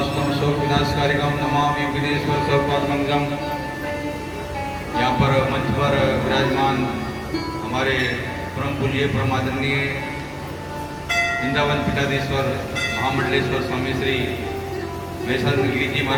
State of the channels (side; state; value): both; identical; correlation 1.00